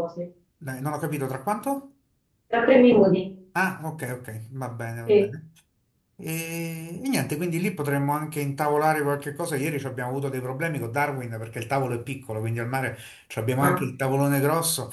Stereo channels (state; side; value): identical; both; correlation 1.00